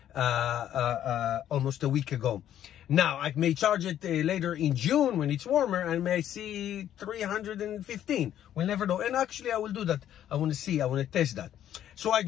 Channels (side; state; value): right; quieter; 11.1 dB